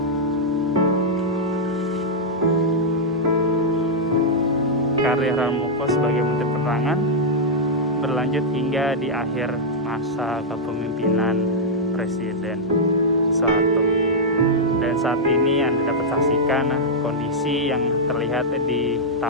Karir Harmoko sebagai Menteri Penerangan berlanjut hingga di akhir masa kepemimpinan Presiden Soeharto. Dan saat ini Anda dapat saksikan kondisi yang terlihat di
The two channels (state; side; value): normal; both; correlation -0.06